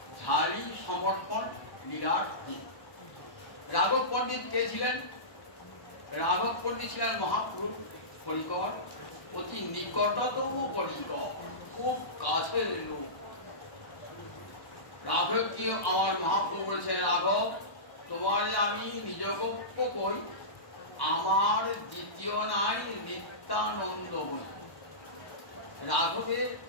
ঝালি সমর্পণ লীলার দিন। রাঘব পণ্ডিত কে ছিলেন? রাঘব পণ্ডিত ছিলেন মহাপুরুষ পরিকর, অতি নিকটতম পরিকর, খুব কাছের লোক। রাঘবকে আমার মহাপ্রভু বলেছেন, রাঘব তোমারে আমি নিজগপ্য কই, আমার দ্বিতীয় নাই নিত্যানন্দ বই। রাঘবের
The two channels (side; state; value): right; late; 1.1 ms